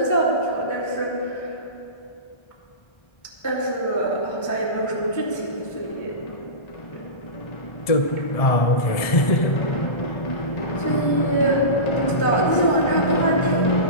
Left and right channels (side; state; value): right; late; 1.3 ms